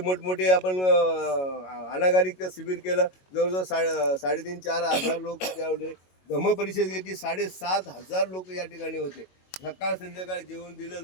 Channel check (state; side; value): late; right; 22 ms